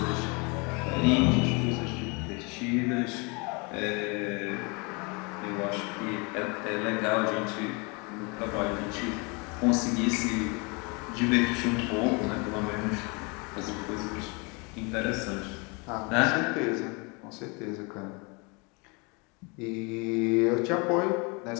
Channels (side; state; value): right; quieter; 30.2 dB